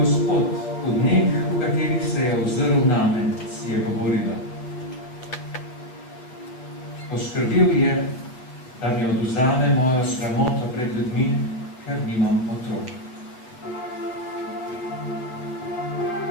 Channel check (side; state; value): right; late; 8.2 ms